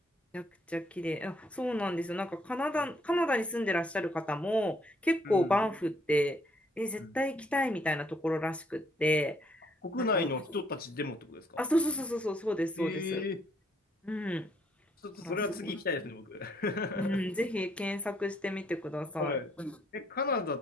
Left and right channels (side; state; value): both; normal; correlation 0.68